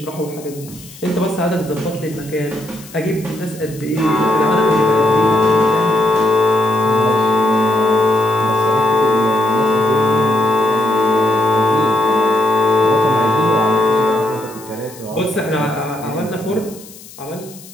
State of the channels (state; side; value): noise; left; hiss, 19 dB below the sound